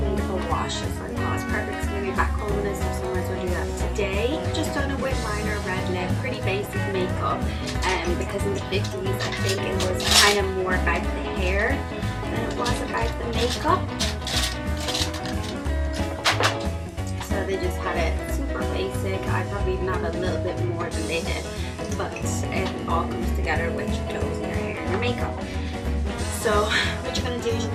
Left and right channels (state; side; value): identical; both; correlation 1.00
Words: of a wash, is what I call it. It's perfect. It's going to be back home and stuff, so I might as well do that today. Just done a wing liner, red lip, pretty basic makeup, because in the 50s I think it was kind of more about the hair than it was about the makeup. So they just had it super basic. I probably even have a little bit more than they did, but it all comes together with your clothes and your hair and your makeup. So what you're going to do is you